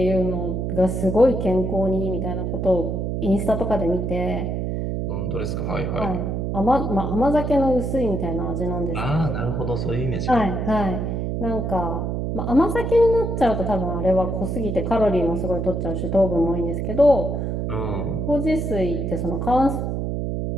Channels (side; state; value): right; noise; hum, 1 dB below the sound